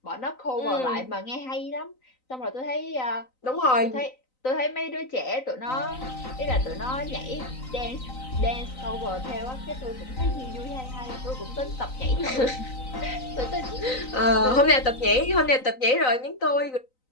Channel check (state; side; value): late; right; 3.9 ms